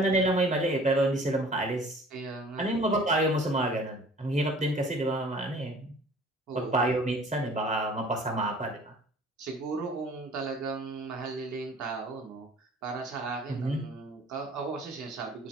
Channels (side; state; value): both; normal; correlation 0.49